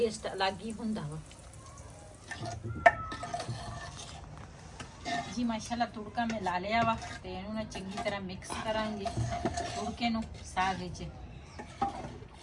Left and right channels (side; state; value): both; identical; correlation 1.00